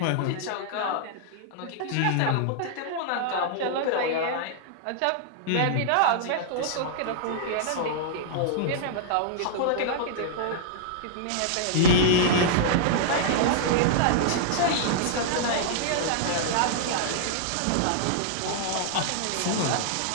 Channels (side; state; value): both; different; correlation -0.01